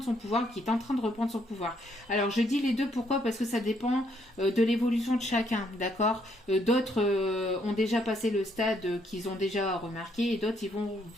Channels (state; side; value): normal; both; correlation 0.71